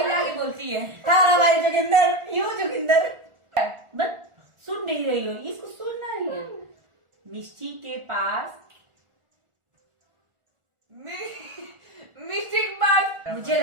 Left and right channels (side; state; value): left; late; 1.4 ms